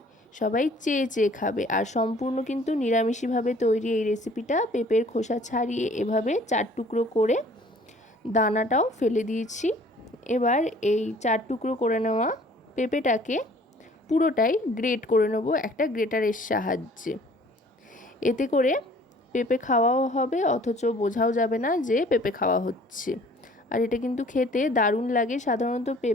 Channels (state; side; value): normal; both; correlation 0.53